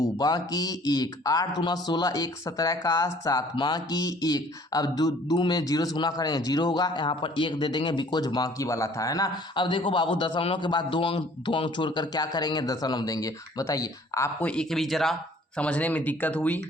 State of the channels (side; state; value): both; normal; correlation 0.55